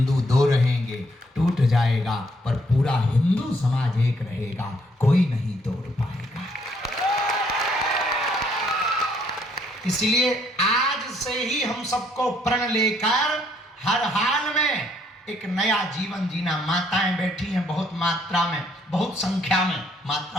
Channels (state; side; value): normal; both; correlation 0.68